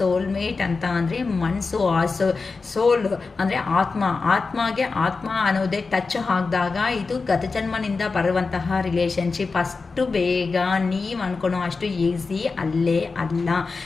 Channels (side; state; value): right; quieter; 4.3 dB